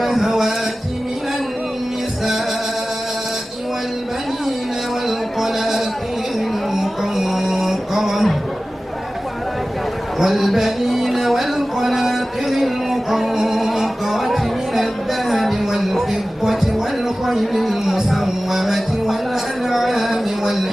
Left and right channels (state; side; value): normal; both; correlation 0.96